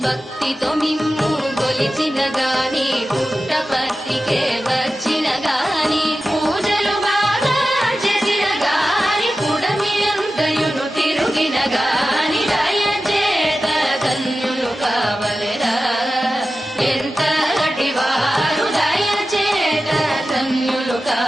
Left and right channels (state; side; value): normal; both; correlation 0.93